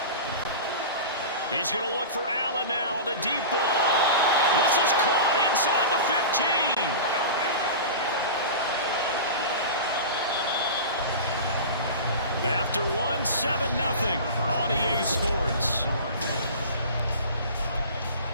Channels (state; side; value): inverted; both; correlation -0.32